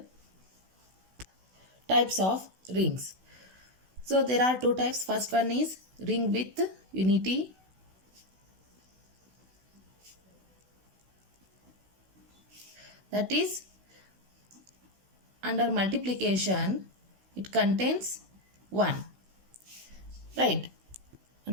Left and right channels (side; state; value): left; late; 16 ms